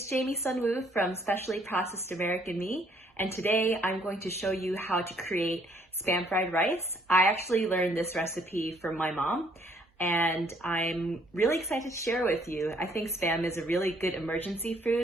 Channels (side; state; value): both; normal; correlation 0.65